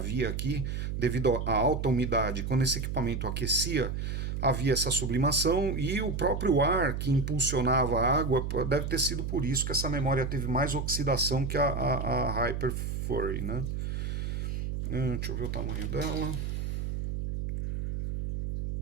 aqui, devido à alta umidade, quando esse equipamento aquecia, havia essa sublimação e o próprio ar que impulsionava a água, deve ter sido por isso que essa memória teve mais oxidação que a Hyper Furry, né? Deixa eu ver o tamanho dela.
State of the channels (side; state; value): right; noise; hum, 3 dB below the sound